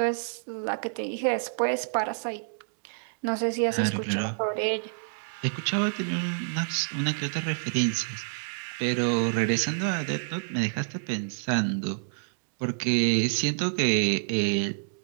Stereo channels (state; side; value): silent; left; digital silence